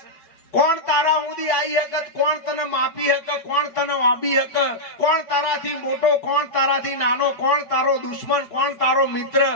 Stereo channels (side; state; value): right; late; 4.6 ms